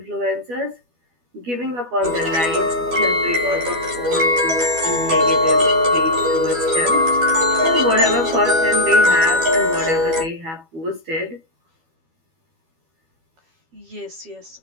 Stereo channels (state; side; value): late; left; 12 ms